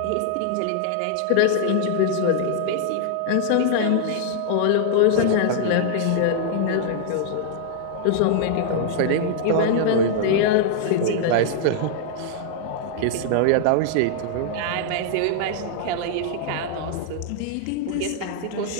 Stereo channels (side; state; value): both; different; correlation -0.01